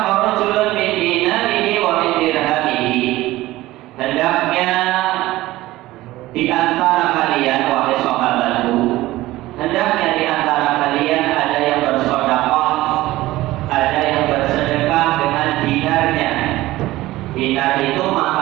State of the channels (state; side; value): quieter; left; 17.3 dB